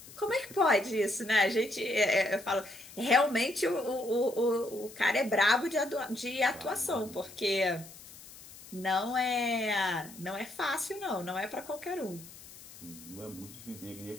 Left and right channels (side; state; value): left; noise; hiss, 18 dB below the sound